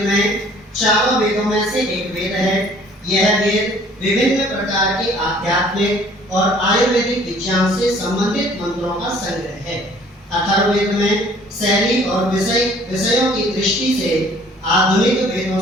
में 4 वेदों में से एक वेद है। यह वेद विभिन्न प्रकार के आध्यात्मिक और आयुर्वेदिक विज्ञान से संबंधित मंत्रों का संग्रह है। अथर्ववेद में शैली और विषयों की दृष्टि से आधुनिक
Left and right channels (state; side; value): normal; both; correlation 0.55